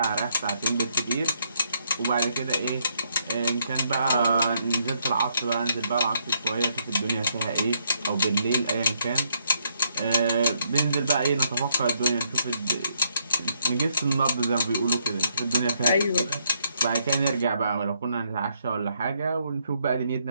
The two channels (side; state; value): both; inverted; correlation -0.73